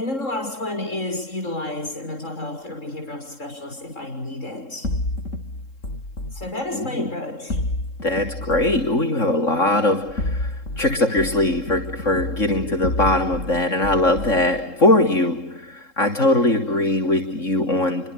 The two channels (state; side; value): late; right; 3.7 ms